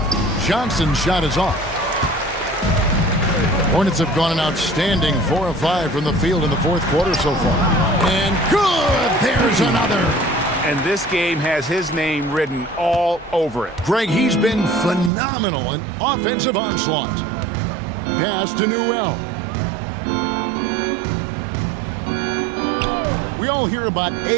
Johnson's shot is off. Hornets have gone an outstanding 4 of 5 from the field in the fourth quarter so far. And good! There's another. And this game has his name written all over it. Greg, he's been phenomenal in offensive onslaught. Pass to Newell. We all hear about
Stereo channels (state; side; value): drops out; left; at 15.1 s